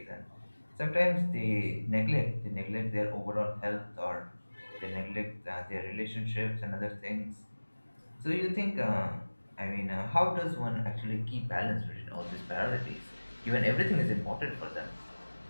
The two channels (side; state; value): both; inverted; correlation -1.00